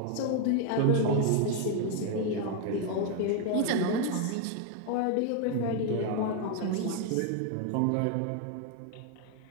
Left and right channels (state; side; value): different; both; correlation 0.01